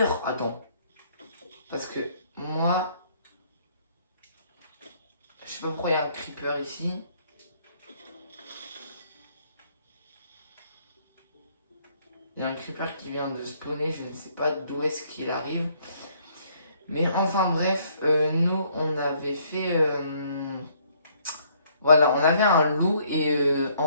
Attends. Parce que moi, je sais pas pourquoi il y a un creeper ici. Il y a un creeper qui vient de spawner, je ne sais pas d'où est-ce qu'il arrive. Mais enfin bref, nous on avait fait... voilà, on avait un loup et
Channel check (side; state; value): both; inverted; correlation -0.66